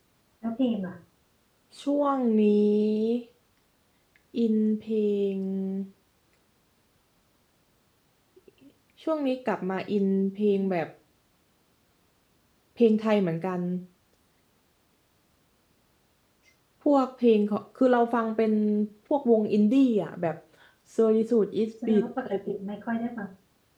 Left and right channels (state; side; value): identical; both; correlation 1.00